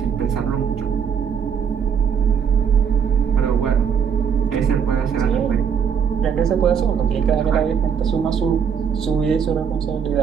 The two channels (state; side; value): quieter; left; 7.3 dB